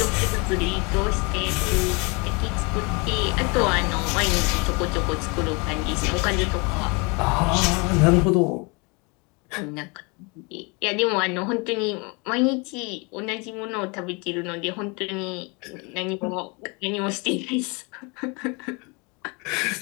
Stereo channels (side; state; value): right; quieter; 29.9 dB